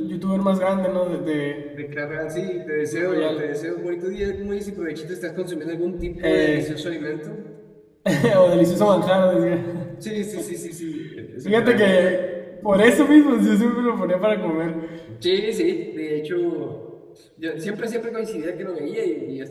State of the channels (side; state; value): both; identical; correlation 1.00